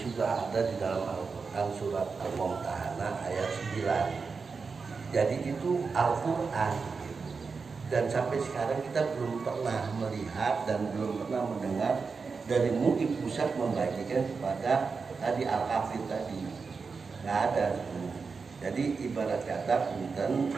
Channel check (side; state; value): left; quieter; 4.9 dB